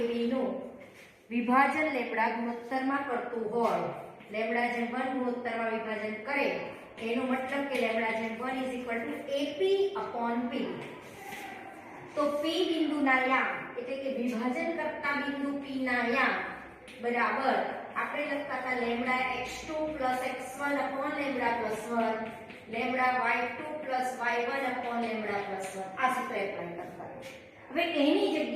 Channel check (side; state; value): both; identical; correlation 1.00